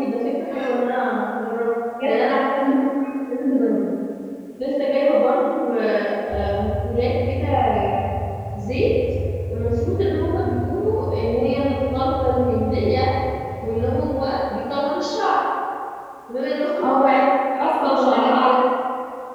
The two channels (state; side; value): identical; both; correlation 1.00